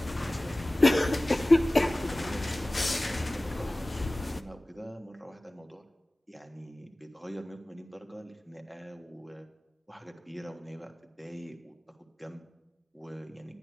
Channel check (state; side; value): normal; both; correlation 0.98